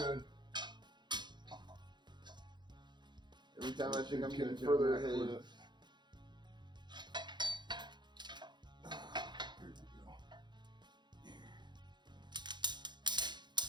Every time I think I'm getting Catch further on that ahead. clip. Here we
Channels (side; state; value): left; late; 0.21 ms